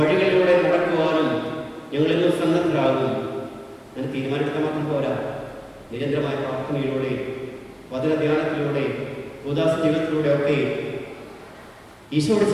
നടക്കുവാനും ഞങ്ങൾ ഇന്ന് സന്നദ്ധരാകും. അങ്ങനെ തീരുമാനമെടുക്കാൻ മാത്രം പോരാ, നിരന്തരമായ പ്രാർത്ഥനയിലൂടെ, വചനധ്യാനത്തിലൂടെ, ഉദാസ ജീവിതത്തിലൂടെ ഒക്കെ ഈശോയോട്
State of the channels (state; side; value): identical; both; correlation 1.00